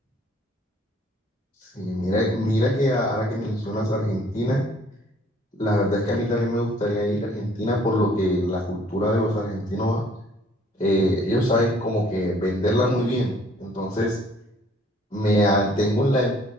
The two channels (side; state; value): both; normal; correlation 0.59